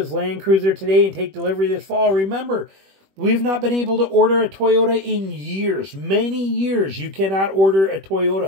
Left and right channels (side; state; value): left; late; 21 ms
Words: Land Cruiser today and take delivery this fall. Remember, we've not been able to order a Toyota in years. Many years. You cannot order a